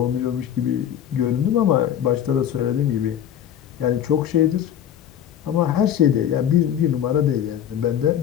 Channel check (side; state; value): right; quieter; 10.0 dB